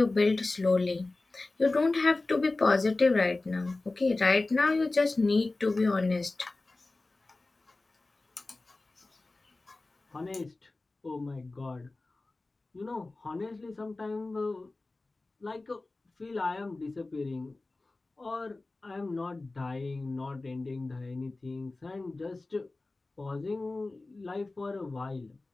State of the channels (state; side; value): quieter; right; 3.2 dB